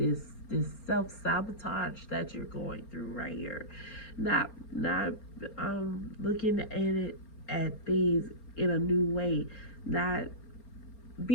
self sabotage that you're going through right here, not looking at it at things in a new way, not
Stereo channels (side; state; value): right; late; 4.3 ms